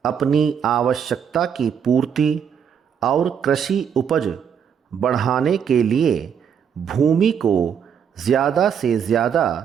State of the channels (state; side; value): quieter; left; 7.7 dB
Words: अपनी आवश्यकता की पूर्ति और कृषि उपज बढ़ाने के लिए भूमि को ज़्यादा से ज़्यादा